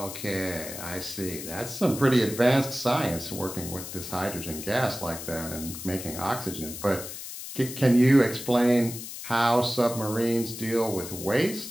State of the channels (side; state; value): left; noise; hiss, 10 dB below the sound